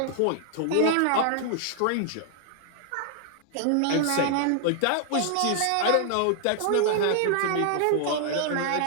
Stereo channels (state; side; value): different; both; correlation 0.00